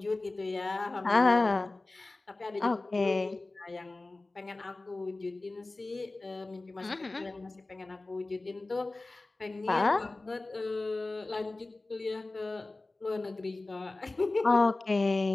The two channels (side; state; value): right; quieter; 3.1 dB